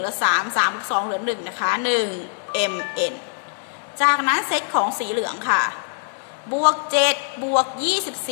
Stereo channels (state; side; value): silent; right; digital silence